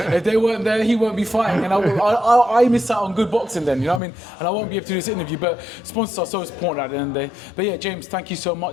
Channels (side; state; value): right; drops out; at 4.0 s